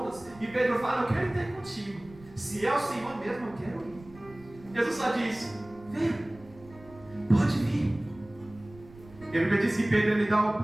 e Pedro fala: eu quero ir contigo. Se é o Senhor mesmo, eu quero ir. Jesus só diz: vem, pode vir. E a Bíblia diz que Pedro ele dá um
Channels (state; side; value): noise; right; rumble, 21 dB below the sound